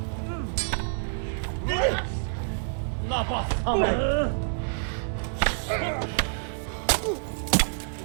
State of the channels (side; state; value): left; silent; digital silence